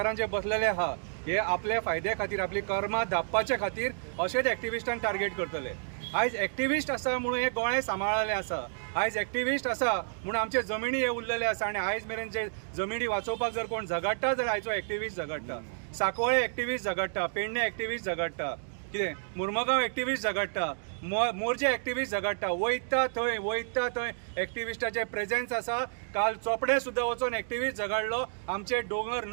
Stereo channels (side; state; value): left; silent; digital silence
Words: जे बसलेले आहा हे आपल्या फायद्या खातीर, आपली कर्मां धापपाच्या खातीर अशेंच एक्टिविस्टांक टार्गेट करतले। आयज एक्टिविस्ट आसा म्हणून हे गोंय सांबाळलेले आसा। आयज एक्टिविस्ट आसा म्हणून आमचे जमिनी हे उरलेले आसा आनी आयज मेरेन जे जमिनी वाचोवपाक जर कोण झगडटा जाल्यार आयचो एक्टिविस्ट झगडटा। सांकवाळे एक्टिविस्ट झगडटा, पेडणे एक्टिविस्ट झगडटा, कितें मुर्मगांव एक्टिविस्ट झगडटा, मोर्जे एक्टिविस्ट झगडटा। वयता थंय एक्टिविस्टाचे प्रेजेंस आसा। काल चोपडे सुद्दां वचून एक्टिविस्ट झगडलो आमचे दोंगर